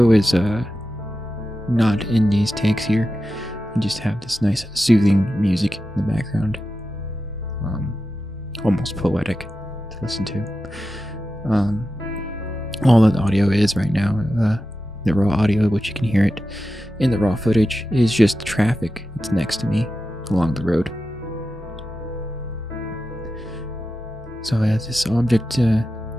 is not in these takes here. You just have this nice soothing music in the background, almost poetic to listen to. All that audio is right now, the raw audio, which you can hear it in the raw footage, is just traffic that's next to me along the road. So this object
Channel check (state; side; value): normal; both; correlation 0.91